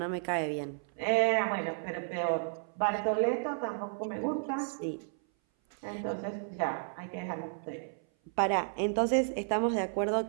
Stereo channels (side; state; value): left; silent; 56 dB below the other